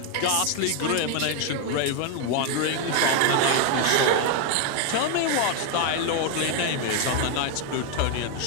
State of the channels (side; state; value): both; different; correlation 0.01